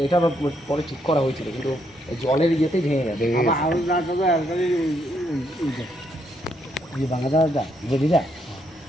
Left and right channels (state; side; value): normal; both; correlation 0.75